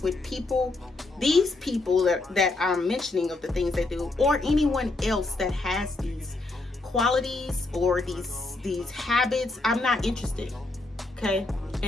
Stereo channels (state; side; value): quieter; right; 3.1 dB